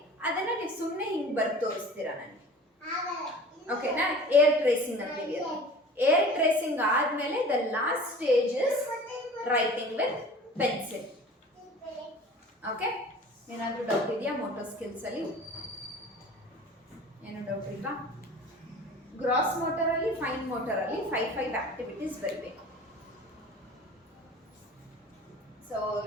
ಅದನ್ನ ನೀವು ಸುಮ್ಮನೆ ಹಿಂಗೆ ಬರೆದು ತೋರಿಸ್ತೀರಾ ನನಗೆ. ಓಕೆನಾ? ಏರ್ ಟ್ರೇಸಿಂಗ್ ಅಂತೀವಿ ಅದು. ಏರ್ ಟ್ರೇಸಿಂಗ್ ಆದಮೇಲೆ the last stage is writing with pencil. Okay, ಏನಾದರೂ ಡೌಟ್ ಇದೆಯಾ ಮೋಟರ್ ಸ್ಕಿಲ್ಸ್ ಅಲ್ಲಿ? ಏನು ಡೌಟ್ ಇಲ್ವಾ? ಗ್ರಾಸ್ ಮೋಟರಲ್ಲಿ, ಫೈನ್ ಮೋಟರಲ್ಲಿ 5 ಆಕ್ಟಿವಿಟೀಸ್ ಬರಬೇಕು. ಸೊ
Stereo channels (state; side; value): normal; both; correlation 0.42